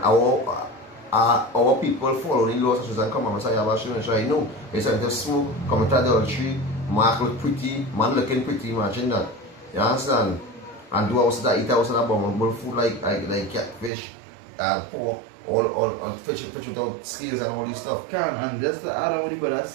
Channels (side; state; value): left; drops out; at 13.9 s